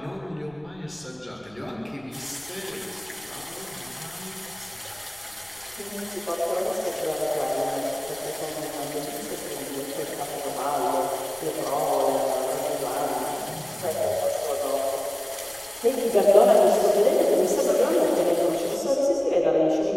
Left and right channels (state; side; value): noise; left; rumble, 27 dB below the sound